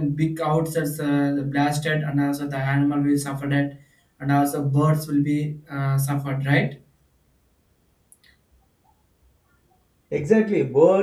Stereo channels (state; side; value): identical; both; correlation 1.00